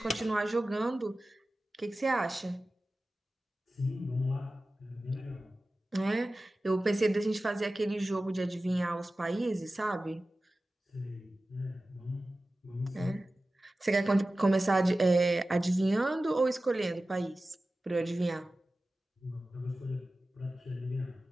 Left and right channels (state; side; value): normal; both; correlation 0.95